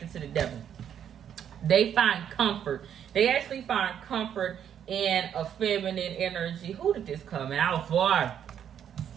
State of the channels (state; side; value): quieter; left; 9.1 dB